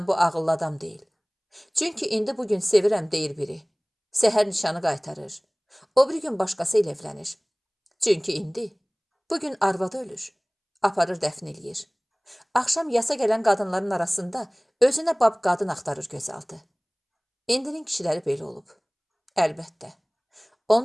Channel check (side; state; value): both; identical; correlation 1.00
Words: bu ağıllı adam deyil. Çünki indi bugün sevirəm deyir biri. Səhər nişanı qaytarır. O bir gün başqası ilə evlənir. Çünki indi, bugün arvadı ölür. Aparır dəfn eləyir. Axşam yasa gələn qadınların arasında özünə bab qadın axtarır gözaltı. İndinin kişiləri belə olub. Əlbəttə.